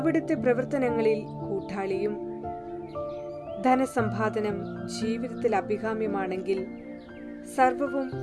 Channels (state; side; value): identical; both; correlation 1.00